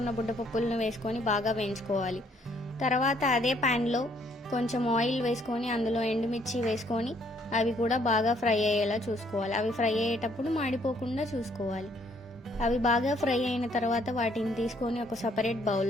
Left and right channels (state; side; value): normal; both; correlation 0.66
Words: బుడ్డపప్పులను వేసుకొని బాగా వేయించుకోవాలి. తర్వాత అదే ప్యాన్లో కొంచెం ఆయిల్ వేసుకొని అందులో ఎండుమిర్చి వేసుకొని అవి కూడా బాగా ఫ్రై అయ్యేలా చూసుకోవాలి. అవి ఫ్రై అయ్యేటప్పుడు మాడిపోకుండా చూసుకోవాలి. అవి బాగా ఫ్రై అయిన తర్వాత వాటిని తీసుకొని ఒక సపరేట్